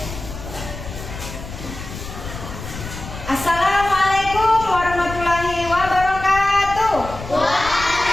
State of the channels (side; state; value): left; noise; rumble, 11 dB below the sound